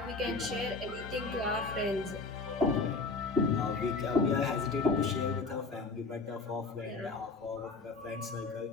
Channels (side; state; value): right; quieter; 3.9 dB